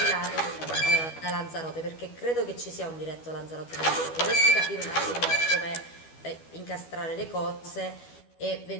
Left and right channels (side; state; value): right; late; 12 ms